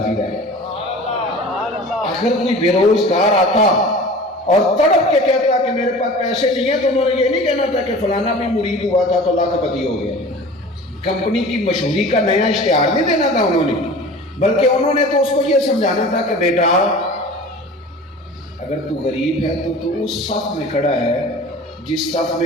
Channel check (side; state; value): both; normal; correlation 0.40